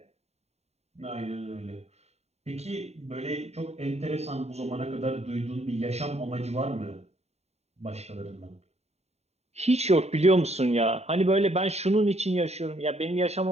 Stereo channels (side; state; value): left; late; 0.31 ms